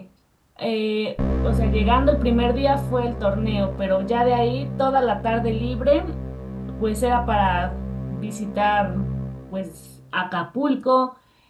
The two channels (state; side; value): identical; both; correlation 1.00